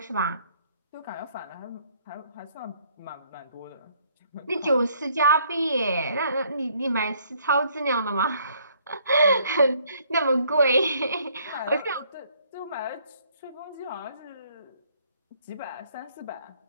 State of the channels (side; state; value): both; inverted; correlation -0.65